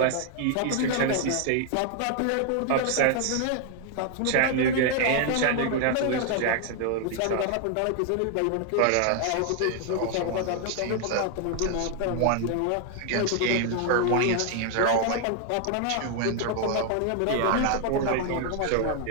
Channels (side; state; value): both; different; correlation 0.00